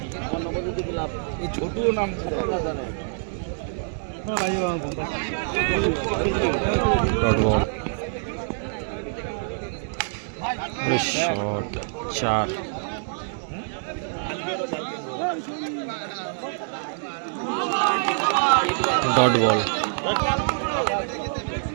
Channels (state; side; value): silent; left; digital silence